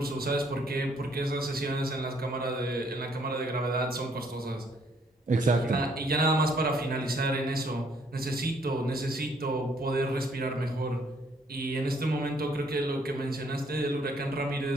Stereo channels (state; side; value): normal; both; correlation 0.66